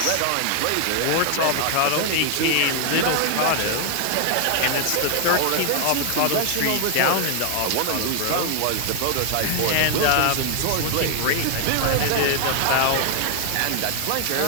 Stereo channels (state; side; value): different; both; correlation 0.00